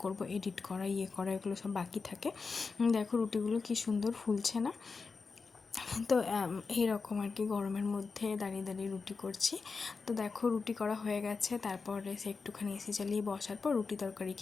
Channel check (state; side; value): quieter; right; 4.7 dB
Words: করব, এডিট করা করা এগুলো সব বাকি থাকে। দেখো রুটিগুলো কী সুন্দর ফুলছে না? তো এইরকম আর কি গরমের মধ্যে দাঁড়িয়ে দাঁড়িয়ে রুটি করছি। তো দেখো রুটি করা হয়ে গেছে, তারপরে সে একটুখানি এসি চালিয়ে বসার পর রুটি তরকারি